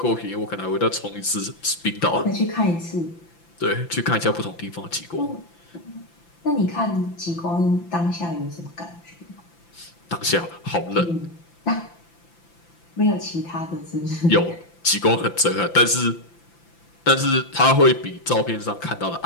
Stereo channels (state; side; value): late; right; 5.9 ms